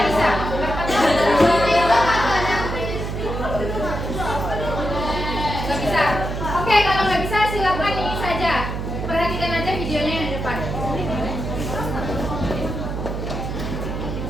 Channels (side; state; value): right; noise; hum, 4 dB below the sound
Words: bisa. Nggak bisa. Oke, kalau nggak bisa silakan ini saja. Perhatikan aja videonya yang di depan.